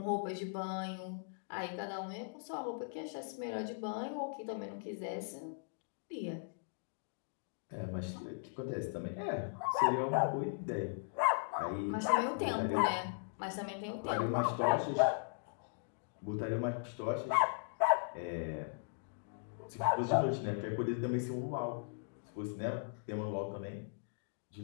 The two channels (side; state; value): right; silent; digital silence